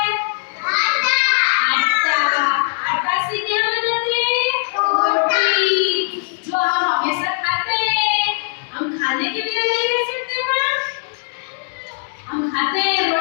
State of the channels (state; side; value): silent; right; 65 dB below the other